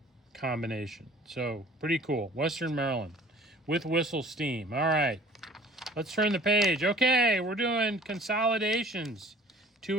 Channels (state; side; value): normal; both; correlation 0.50